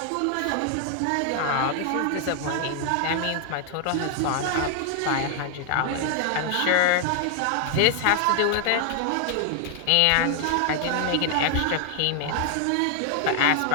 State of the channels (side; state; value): both; different; correlation 0.00